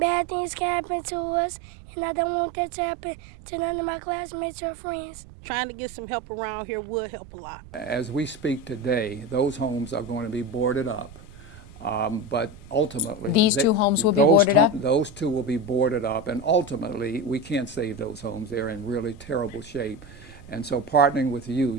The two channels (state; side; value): noise; right; rumble, 19 dB below the sound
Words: things can happen to us, and I don't want that to happen to none of my classmates or friends. Trying to get some help around here would help a lot. As we speak today, those homes are going to be boarded up. But ultimately, These two homes will be boarded up? Those two will be boarded up, and ultimately, we can't save those homes. They're in really terrible shape. And so partnering with you,